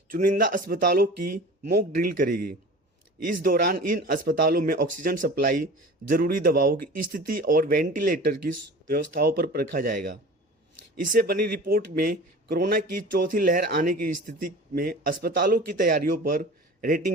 चुनिंदा अस्पतालों की मॉक ड्रिल करेगी। इस दौरान इन अस्पतालों में ऑक्सीजन सप्लाई, जरूरी दवाओं की स्थिति और वेंटिलेटर की व्यवस्थाओं पर परखा जाएगा। इससे बनी रिपोर्ट में कोरोना की चौथी लहर आने की स्थिति में अस्पतालों की तैयारियों पर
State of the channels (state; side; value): normal; both; correlation 0.39